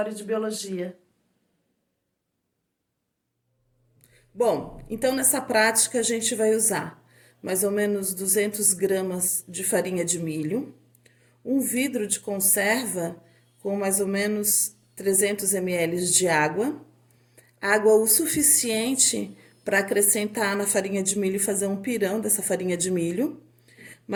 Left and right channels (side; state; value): both; identical; correlation 1.00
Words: de biologia. Bom, então nessa prática a gente vai usar mais ou menos 200 gramas de farinha de milho, um vidro de conserva com mais ou menos 300 ml de água, água o suficiente para acrescentar na farinha de milho e fazer um pirão dessa farinha de milho,